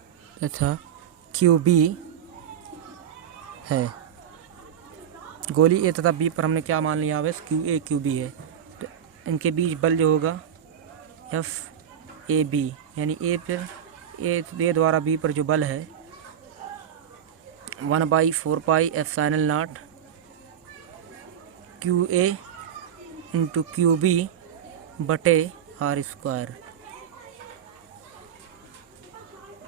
QB है। गोली ए तथा बी पर हमने क्या मान लिया, आवेश QA QB है। तो इनके बीच बल जो होगा FAB, यानी ए द्वारा बी पर जो बल है 1/4πε0 QA × QB बटे r²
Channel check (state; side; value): quieter; left; 9.1 dB